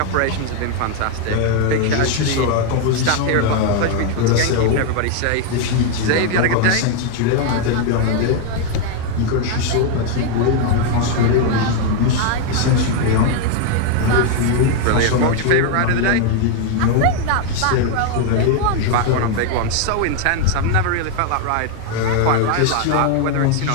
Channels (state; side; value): different; both; correlation 0.01